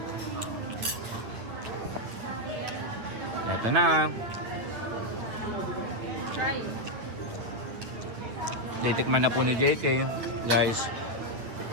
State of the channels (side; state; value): left; late; 9.5 ms